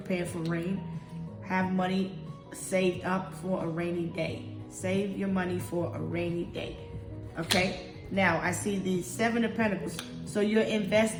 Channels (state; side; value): identical; both; correlation 1.00